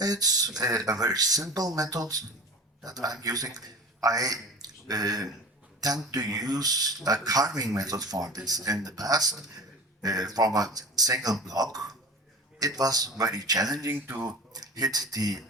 a very simple method that I'm using. I tend to use a carving method for this. In the past, from a single block, it was very challenging to hit the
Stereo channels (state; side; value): normal; both; correlation 0.36